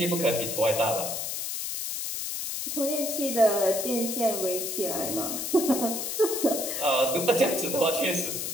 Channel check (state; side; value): noise; left; hiss, 3 dB below the sound